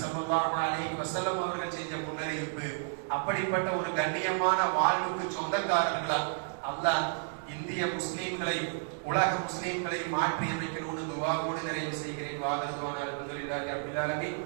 ஸல்லல்லாஹு அலைஹி வஸல்லம் அவர்கள் செஞ்ச முன்னறிவிப்பு. அப்படிப்பட்ட ஒரு கண்ணியமான வாழ்வுக்கு சொந்தக்காரர்களா அல்லாஹ் இந்திய முஸ்லிம்களை, உலக முஸ்லிம்களை மாற்றி அமைக்கணும்னு துஆவோடு நிறைவு செய்கிறேன். வாகருதுவான அல்ஹம்துலில்லாஹி ரப்பில் ஆலமீன்.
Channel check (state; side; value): silent; left; digital silence